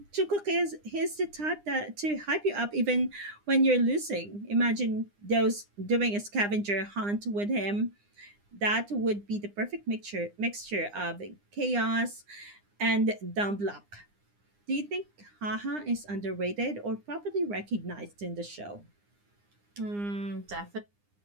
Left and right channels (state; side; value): late; left; 9.8 ms